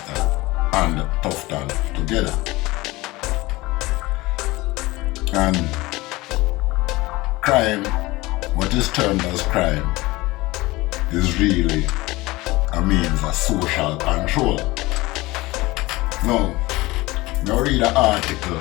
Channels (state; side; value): quieter; right; 20.7 dB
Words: and Tufton together. And crime, what is termed as crime, is really a means of social control. Now read an article,